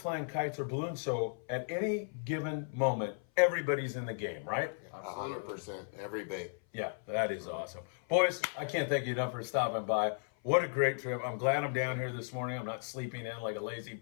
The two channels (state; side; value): silent; right; 54 dB below the other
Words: flying kites or balloons, so at any given moment, everybody's in the game, right? 100%. Every bait. Yeah, that is awesome. Boys, I can't thank you enough for stopping by. What a great trip. I'm glad I'm down here this morning. I'm not sleeping in like a lazy